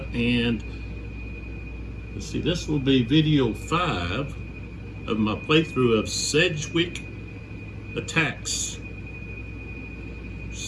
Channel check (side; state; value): both; identical; correlation 1.00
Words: and let's see, this will be video 5 of my playthrough of Sedgwick Attacks,